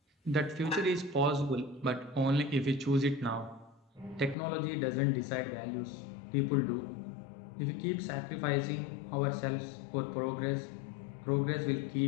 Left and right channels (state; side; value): drops out; right; at 4.4 s